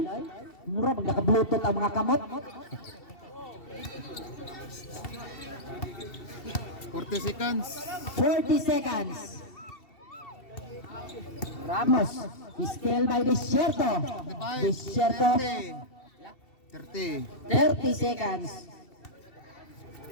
Mura pag naka-bluetooth ang mga kamot. 40 seconds. 40 seconds. Ramos still by Desierto 30. 30 seconds.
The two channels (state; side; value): late; right; 2.7 ms